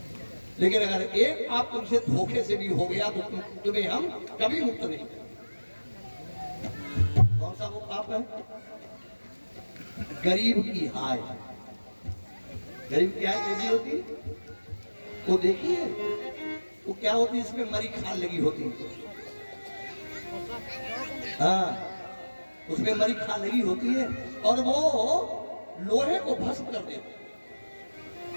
लेकिन अगर एक पाप तुमसे धोखे से भी हो गया तो तुम्हें हम कभी मुक्त नहीं करेंगे। कौन सा वो पाप है? गरीब की हाय। गरीब की हाय कैसी होती है? वो देखिए, वो क्या होती है, इसमें मरी खाल लगी होती है। हाँ, उसमें मरी खाल लगी होती है और वो लोहे को भस्म कर देती है।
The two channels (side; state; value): both; inverted; correlation -1.00